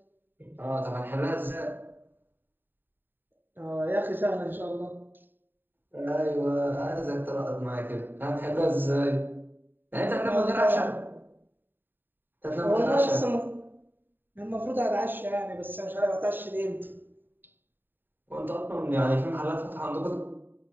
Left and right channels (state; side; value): late; left; 0.093 ms